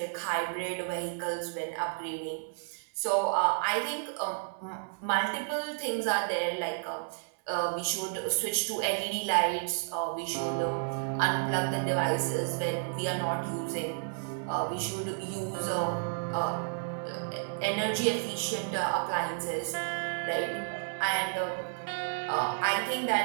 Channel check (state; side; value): silent; left; 57 dB below the other